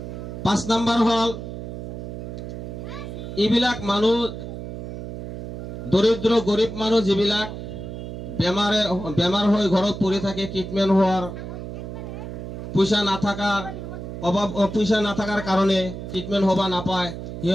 5 নম্বৰ হ'ল এইবিলাক মানুহ দৰিদ্ৰ গৰীব মানুহ যিবিলাক বেমাৰ হৈ ঘৰত পৰি থাকে, ট্ৰিটমেণ্ট হোৱাৰ পইচা নাথাকাৰ কাৰণে ট্ৰিটমেণ্ট হ'ব নাপায়,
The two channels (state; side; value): noise; right; hum, 8 dB below the sound